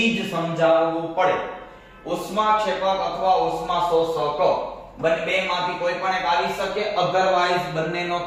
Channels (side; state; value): both; identical; correlation 1.00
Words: જ સમજાવવું પડે. ઉષ્માક્ષેપક અથવા ઉષ્મા શોષક, બે માંથી કોઈ પણ એક આવી શકે, અધરવાઇઝ બંનેનો